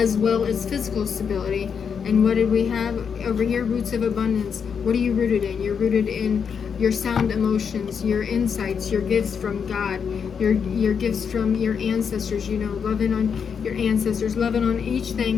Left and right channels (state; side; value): quieter; right; 6.7 dB